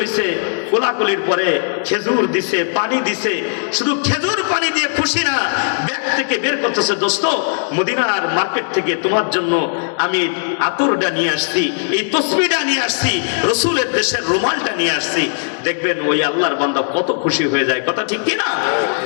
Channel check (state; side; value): silent; right; digital silence